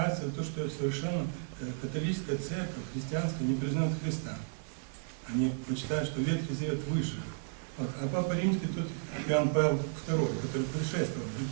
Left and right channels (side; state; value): left; silent; 56 dB below the other